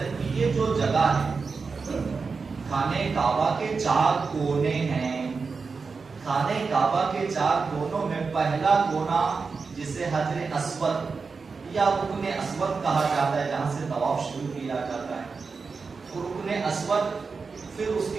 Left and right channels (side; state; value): left; quieter; 4.8 dB